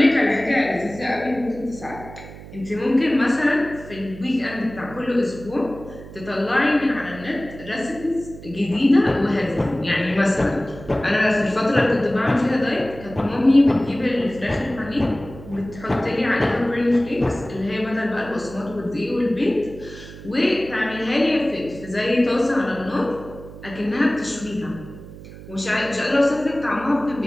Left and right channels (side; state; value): right; noise; hum, 15 dB below the sound